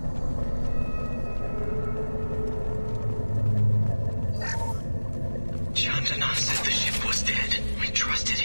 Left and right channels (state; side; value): inverted; both; correlation -1.00